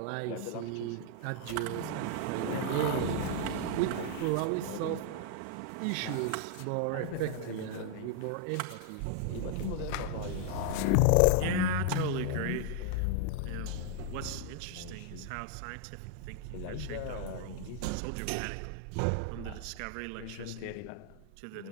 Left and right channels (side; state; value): both; different; correlation 0.00